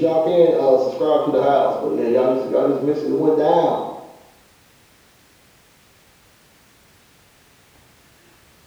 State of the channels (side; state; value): both; identical; correlation 1.00